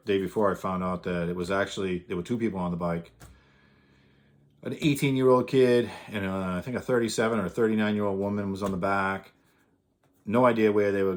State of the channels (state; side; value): identical; both; correlation 1.00